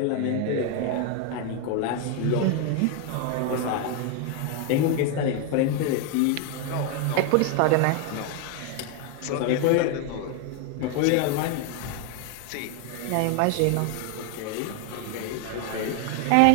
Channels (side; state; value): both; different; correlation 0.01